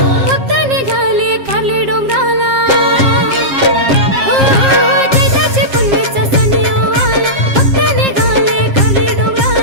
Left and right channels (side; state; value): left; late; 7.5 ms